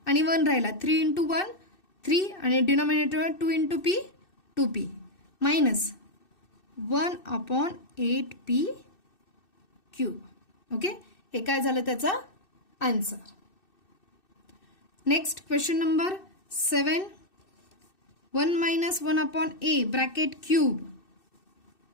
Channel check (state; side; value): late; right; 2.6 ms